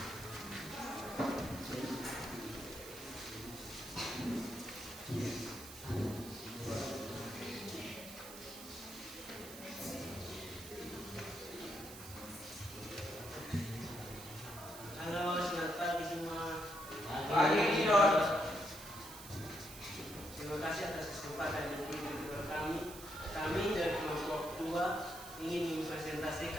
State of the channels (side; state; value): right; noise; hiss, 13 dB below the sound